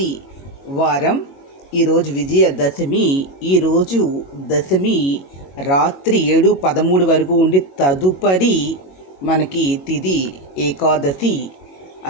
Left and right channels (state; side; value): late; right; 22 ms